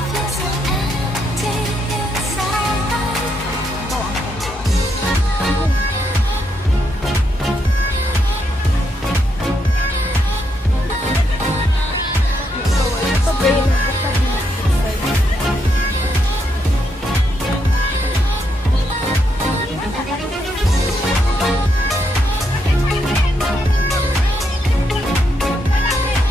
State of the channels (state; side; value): normal; both; correlation 0.78